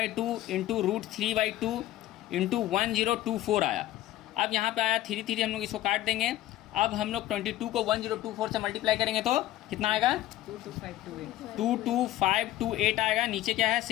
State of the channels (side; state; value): right; quieter; 14.6 dB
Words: इंटू √3/2 इंटू 1024 आया। अब यहाँ पे आया 3 हम लोग इसको काट देंगे। अब हम लोग 22 को 1024 से मल्टीप्लाई करेंगे तो कितना आएगा 22528 आएगा, नीचे क्या है